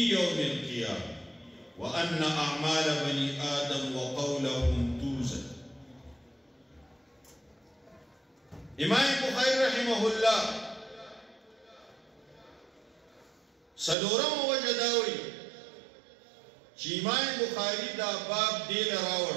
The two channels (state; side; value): drops out; left; at 14.0 s